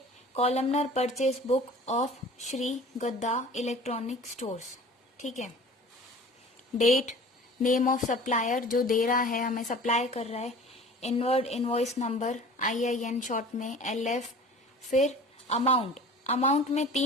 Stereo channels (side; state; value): both; normal; correlation 0.43